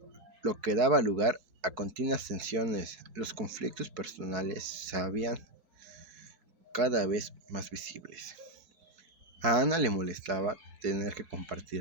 lo que daba lugar a continuas tensiones. Los conflictos personales se habían cada vez más visibles. A Ana le molestaba tener que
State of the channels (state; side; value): late; left; 4.6 ms